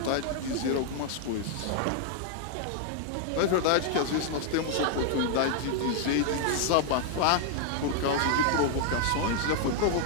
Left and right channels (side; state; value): both; different; correlation 0.00